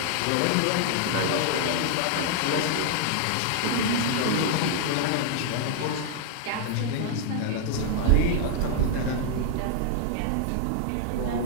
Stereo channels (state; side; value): different; both; correlation -0.01